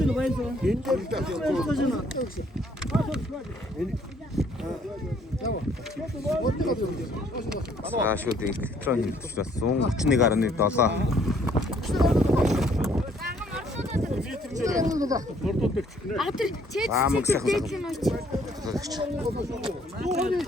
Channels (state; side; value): normal; both; correlation 0.63